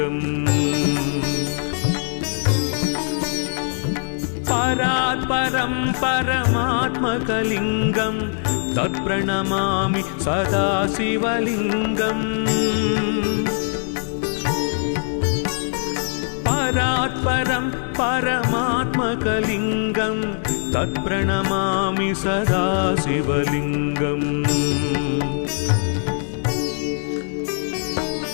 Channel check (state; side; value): silent; right; 64 dB below the other